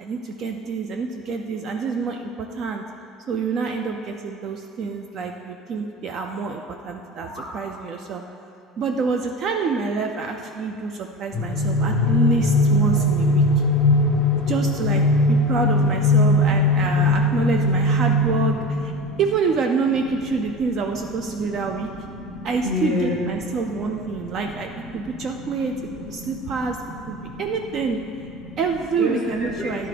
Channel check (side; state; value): both; normal; correlation 0.31